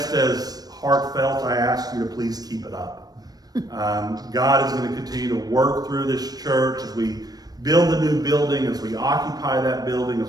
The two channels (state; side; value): late; left; 0.19 ms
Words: as heartfelt, I ask you to please keep it up. God is going to continue to work through this church as we build the new building, as we occupy that building,